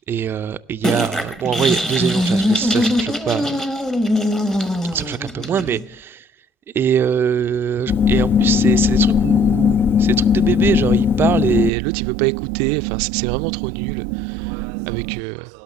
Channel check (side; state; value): left; drops out; at 11.7 s